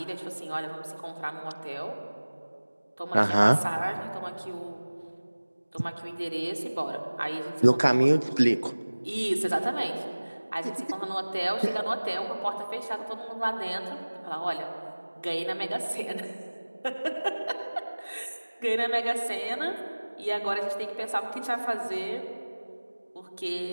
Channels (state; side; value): inverted; both; correlation -1.00